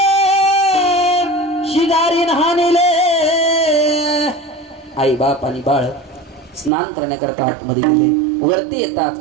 शिगारी नहानेले. आई बाप आणि बाळ स्नान करण्याकरता आतमध्ये गेले. वरती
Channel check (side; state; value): left; drops out; at 6.7 s